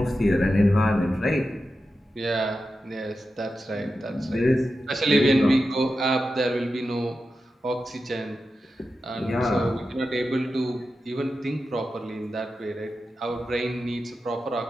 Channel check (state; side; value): normal; both; correlation 0.91